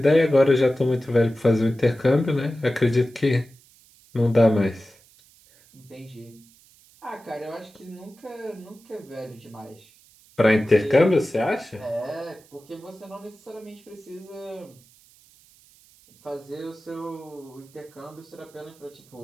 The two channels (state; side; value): noise; right; hiss, 28 dB below the sound